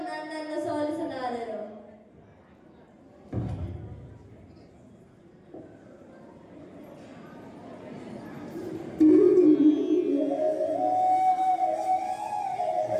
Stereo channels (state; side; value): identical; both; correlation 1.00